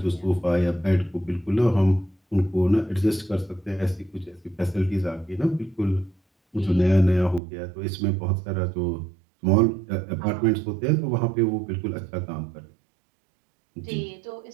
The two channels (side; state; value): left; drops out; at 7.4 s